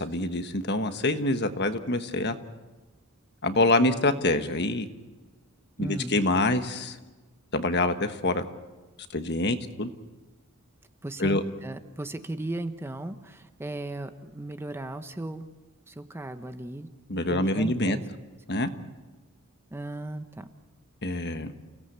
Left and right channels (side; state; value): both; normal; correlation 0.19